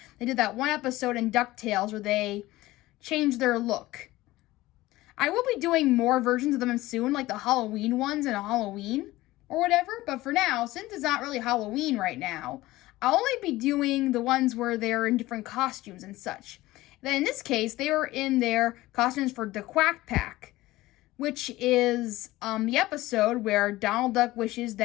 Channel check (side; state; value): right; quieter; 17.9 dB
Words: they did that one episode in Ducktales where they changed their look. I will be doing more versions of them soon, like the Halloween ones in Halloween or whatever. But for now, since it's not really Halloween right now, I'll only be doing the ones where they're in different costumes and such. Then in this case, they were in their costumes for the Quack Pack, which is the episode where Donald Duck wishes